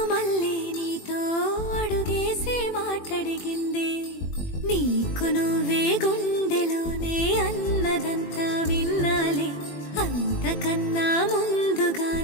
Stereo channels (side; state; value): right; late; 21 ms